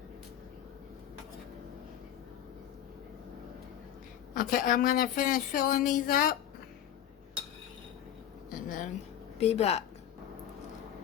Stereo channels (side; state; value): right; quieter; 10.7 dB